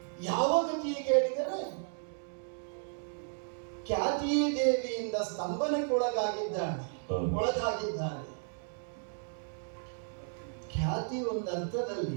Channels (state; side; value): silent; left; 55 dB below the other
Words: ಯಾವ ಗತಿ ಕೇಳಿದರೆ ಖ್ಯಾತಿ ದೇವಿಯಿಂದ ಸ್ತಂಭನಕ್ಕೊಳಗಾಗಿದ್ದಾನೆ. ಖ್ಯಾತಿ